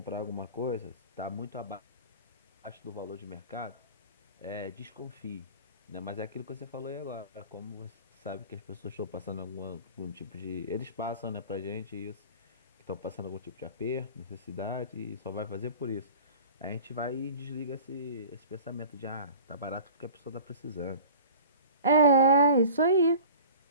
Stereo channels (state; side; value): inverted; both; correlation -0.42